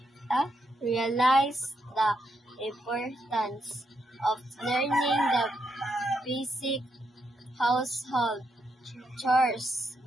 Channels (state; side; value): normal; both; correlation 0.80